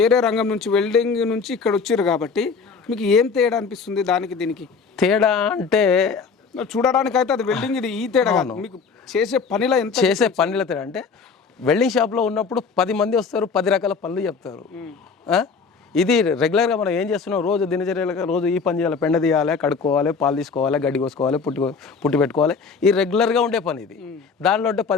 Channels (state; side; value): quieter; right; 5.2 dB